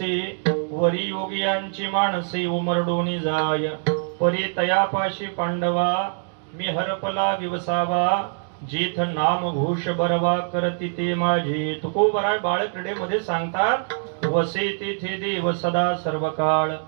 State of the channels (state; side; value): silent; left; digital silence